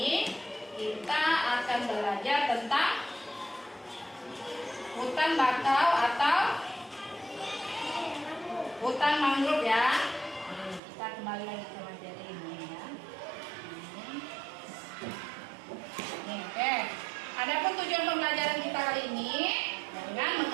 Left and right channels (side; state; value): left; drops out; at 10.8 s